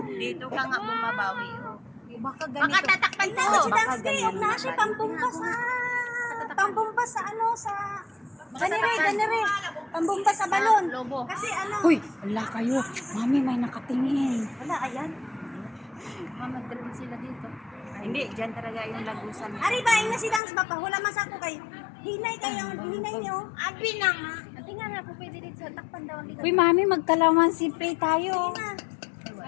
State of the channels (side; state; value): right; drops out; at 20.4 s